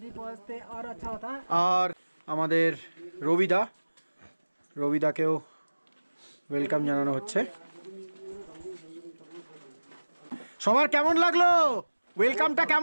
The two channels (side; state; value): both; inverted; correlation -1.00